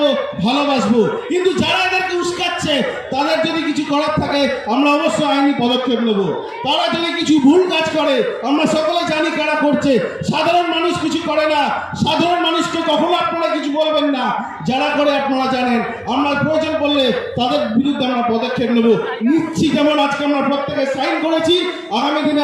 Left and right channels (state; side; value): identical; both; correlation 1.00